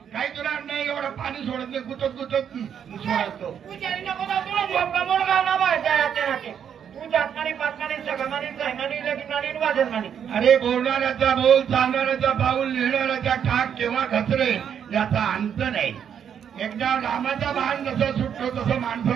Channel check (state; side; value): quieter; left; 8.3 dB